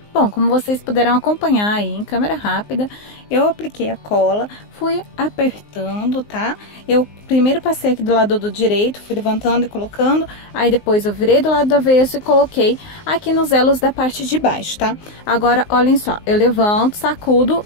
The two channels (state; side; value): late; right; 19 ms